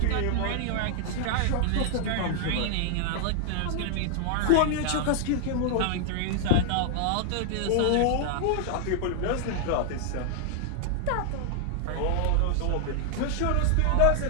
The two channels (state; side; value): different; both; correlation 0.00